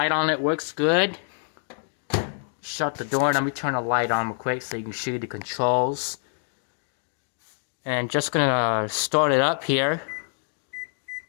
on it works good. Shut the door and let me turn the light on real quick so you can see the controls. And just gonna start it up here.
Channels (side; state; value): right; silent; digital silence